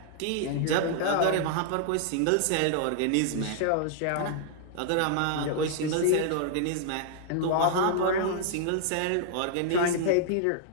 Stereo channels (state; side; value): different; both; correlation -0.01